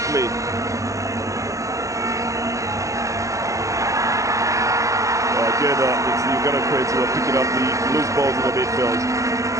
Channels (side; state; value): left; late; 0.15 ms